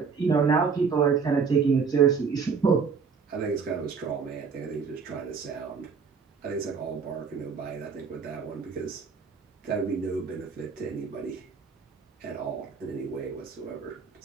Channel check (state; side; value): quieter; left; 5.7 dB